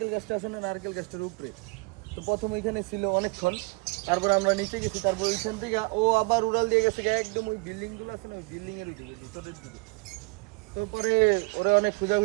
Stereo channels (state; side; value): quieter; left; 28.2 dB